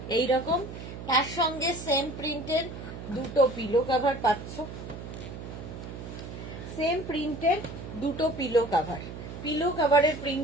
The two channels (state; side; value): noise; right; hum, 10 dB below the sound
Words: এইরকম, তার সঙ্গে সেম প্রিন্টের দুটো পিলো কাভার পাচ্ছ, সেম প্রিন্টের দুটো পিলো কাভার। পিলো কাভারের